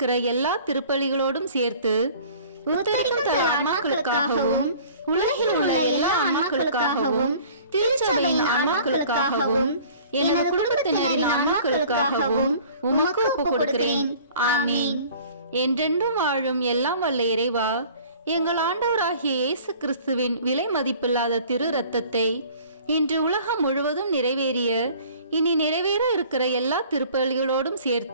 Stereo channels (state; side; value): inverted; both; correlation -0.49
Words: எல்லா திருப்பலிகளோடும் சேர்த்து உத்தரிக்கும் தல ஆன்மாக்களுக்காகவும் உலகில் உள்ள எல்லா ஆன்மாக்களுக்காகவும் திருச்சபையின் ஆன்மாக்களுக்காகவும் எனது குடும்பத்தினரின் ஆன்மாக்களுக்காகவும் உமக்கு ஒப்புக் கொடுக்கிறேன். ஆமீன். என்றென்றும் வாழும் எல்லாம் வல்ல இறைவா, எங்கள் ஆண்டவராகிய இயேசு கிறிஸ்துவின் விலை மதிப்பில்லாத திரு இரத்தத்தை இன்று உலகம் முழுவதும் நிறைவேறிய இனி நிறைவேற இருக்கிற எல்லா திருப்பலிகளோடும்